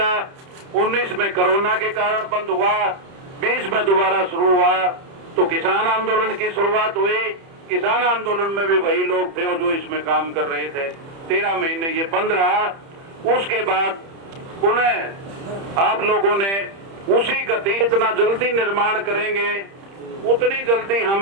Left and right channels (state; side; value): late; left; 30 ms